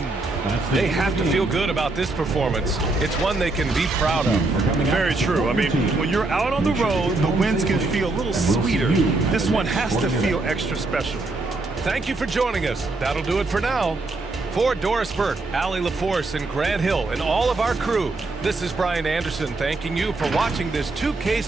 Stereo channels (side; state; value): left; quieter; 3.2 dB